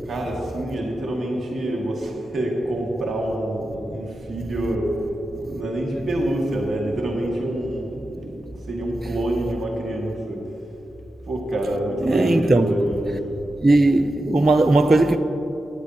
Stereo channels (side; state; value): both; normal; correlation 0.90